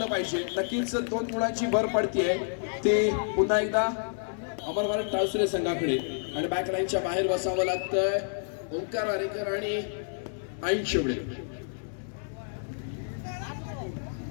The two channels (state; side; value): silent; right; digital silence